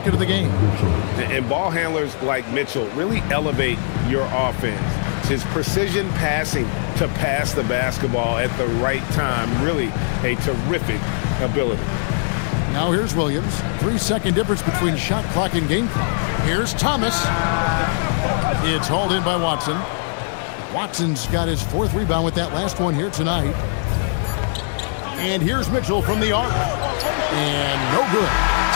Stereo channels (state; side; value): silent; right; 65 dB below the other